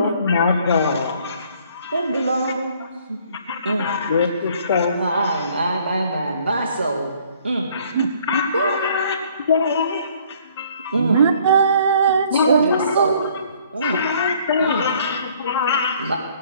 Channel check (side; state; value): both; inverted; correlation -0.59